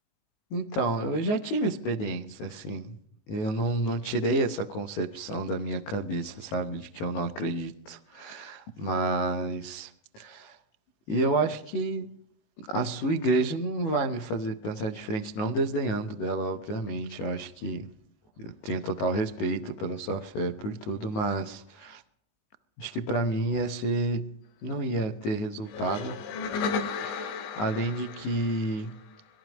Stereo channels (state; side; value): late; right; 19 ms